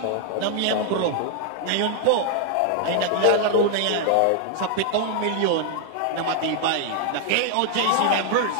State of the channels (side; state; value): both; different; correlation 0.00